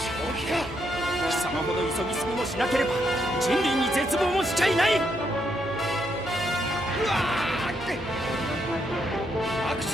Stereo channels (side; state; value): left; noise; hum, 20 dB below the sound